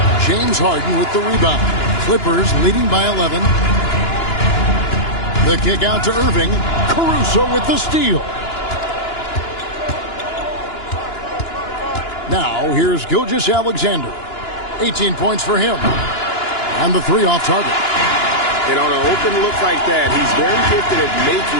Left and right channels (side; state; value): right; late; 2.9 ms